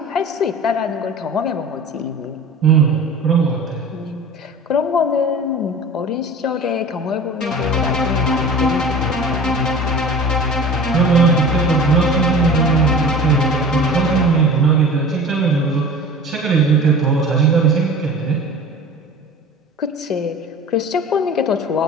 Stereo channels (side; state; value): both; normal; correlation 0.39